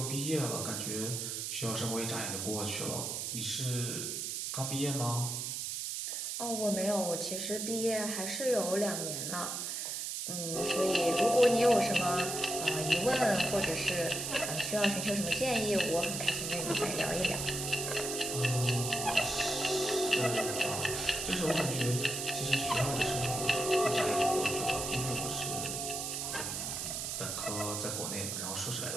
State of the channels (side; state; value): right; noise; hiss, 3 dB below the sound